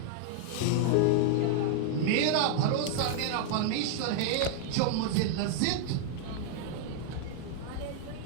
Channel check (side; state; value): both; different; correlation 0.00